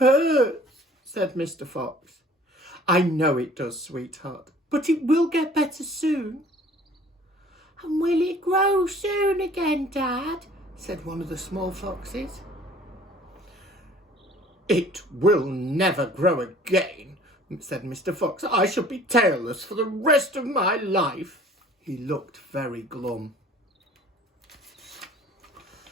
said Mr. Fox. "I know it does, sweetheart, but it will get better soon." "And will it grow soon again, Dad?" said one of the small foxes. "It will never grow again," said Mr. Fox. "I shall be tailless for the rest of my life." He looked very glum.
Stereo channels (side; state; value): both; normal; correlation 0.51